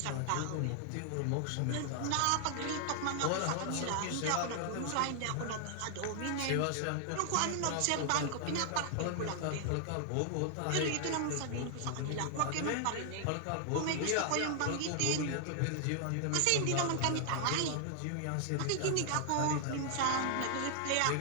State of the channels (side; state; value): both; different; correlation 0.00